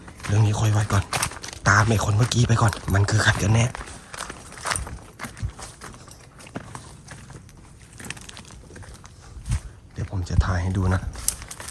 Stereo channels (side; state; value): both; identical; correlation 1.00